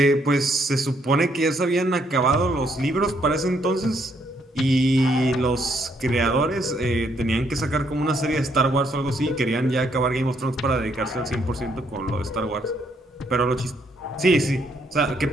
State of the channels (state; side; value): normal; both; correlation 0.72